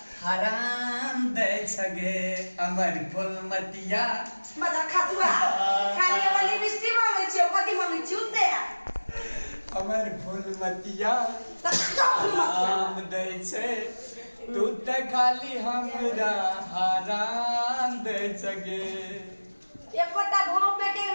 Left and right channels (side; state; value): both; inverted; correlation -1.00